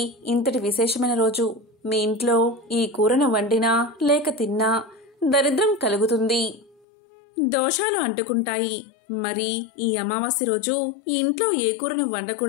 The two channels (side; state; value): right; drops out; at 6.8 s